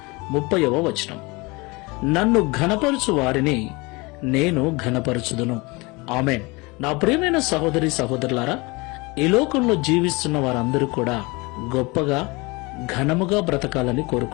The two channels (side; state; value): right; quieter; 25.6 dB